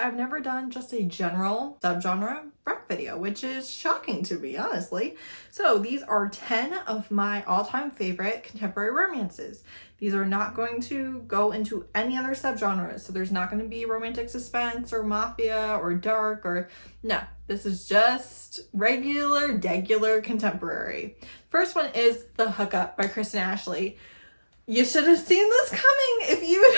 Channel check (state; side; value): inverted; both; correlation -1.00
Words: I've never done just a general subgenre rec video, which is shocking to me, honestly. So these are 10 of my all-time favorite contemporary romances. These are not going to go into any other subgenres, so there's not going to be romantic suspense or mafia or dark or no. This is just degular contemporary. First one is The Hookup by Kristen Ashley. You should have seen this coming if you